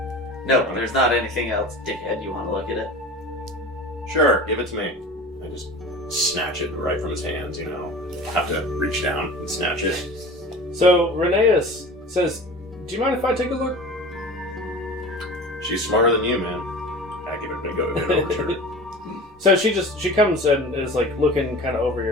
No, there's not anything else, dickhead. You want to look at it? Sure, give it to me. I just snatch it right from his hands, you know. Have to reach down and snatch it. So Rheneas says, do you mind if I take a look? She's smarter than you, man. I give it a big over to her. So she comes and is like looking kind of over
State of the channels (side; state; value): both; normal; correlation 0.36